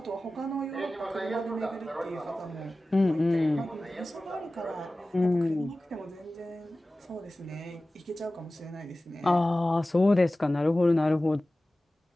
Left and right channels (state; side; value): normal; both; correlation 0.96